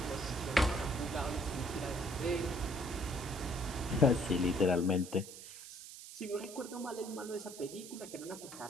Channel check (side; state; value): right; noise; hiss, 13 dB below the sound